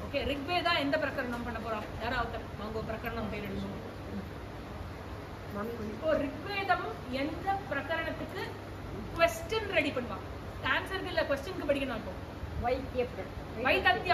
ஓகே, ரிக்வேதா எந்த பிரகரணம் பண்ண போறோம்? யாராவது வாங்க பிரகரணம் பேர் எழுதுவோம். இப்போ ரிக்வேதம் எந்த பிரகரணத்துக்கு क्वेश्चन ரெடி பண்ணுவாங்க. ஆன்சருக்கு இல்ல क्वेश्चनக்கு படிக்கணும். இப்போ வைத்தத்ய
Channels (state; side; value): identical; both; correlation 1.00